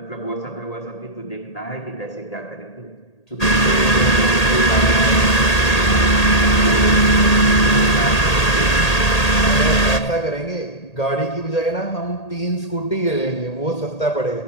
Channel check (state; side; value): late; right; 1.8 ms